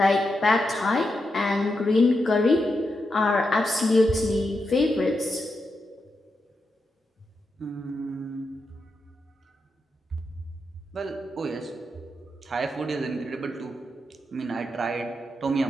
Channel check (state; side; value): normal; both; correlation 0.86